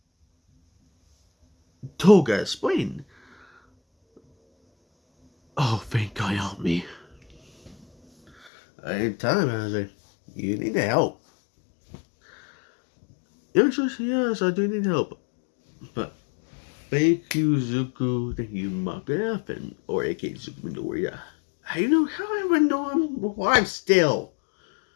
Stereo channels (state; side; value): drops out; right; at 8.5 s